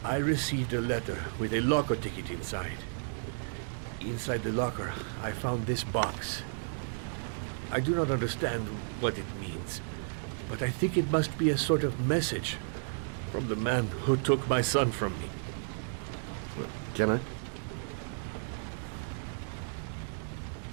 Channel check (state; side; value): silent; left; digital silence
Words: I received a letter with a locker ticket inside. Inside the locker, I found this box. I do not understand what it means, but I think it must be a sort of message from the man who took my son from me. Can I?